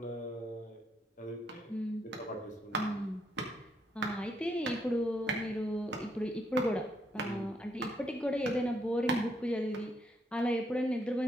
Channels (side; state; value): both; normal; correlation 0.75